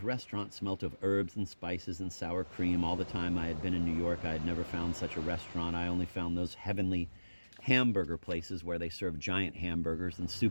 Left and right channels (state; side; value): inverted; both; correlation -1.00